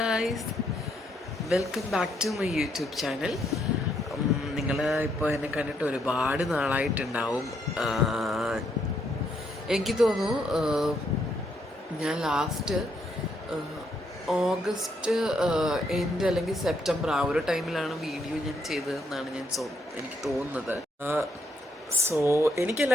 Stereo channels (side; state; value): both; normal; correlation 0.74